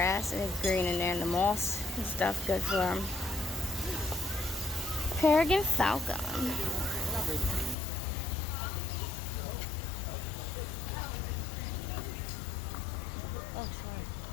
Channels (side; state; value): right; drops out; at 7.8 s